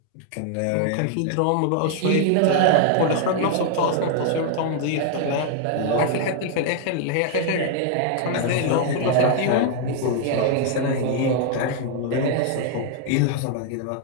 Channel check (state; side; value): different; both; correlation 0.00